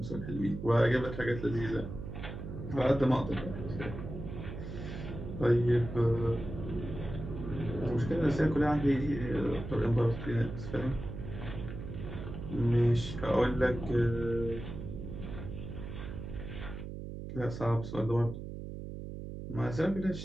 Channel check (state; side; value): noise; right; hum, 8 dB below the sound